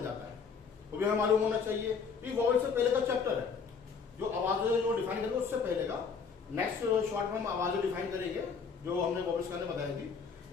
जाता है। वो भी हमें मालूम होना चाहिए। ये वॉवेल से पहले का चैप्टर है, जो आवाजें जो डिफाइन करेंगे उससे पहले का। नेक्स्ट शॉर्ट में हम आवाजें डिफाइन करेंगे जो हमने वॉवेल्स का बताई थी।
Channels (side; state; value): right; quieter; 5.7 dB